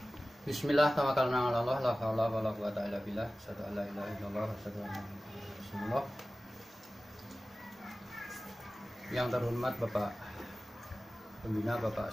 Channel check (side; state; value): both; normal; correlation 0.96